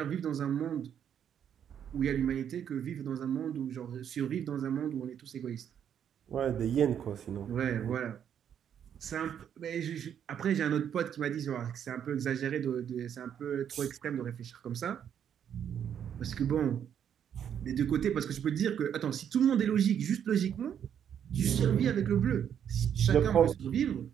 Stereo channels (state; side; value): quieter; left; 8.9 dB